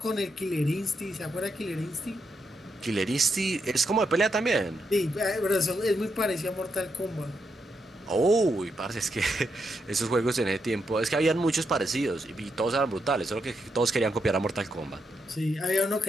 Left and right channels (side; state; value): both; normal; correlation 0.82